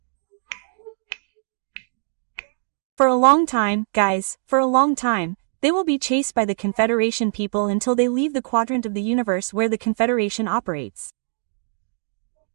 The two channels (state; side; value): silent; left; digital silence